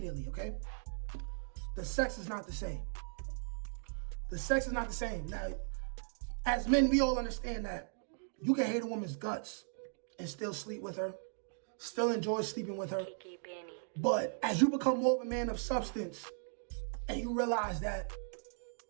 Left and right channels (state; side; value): silent; left; digital silence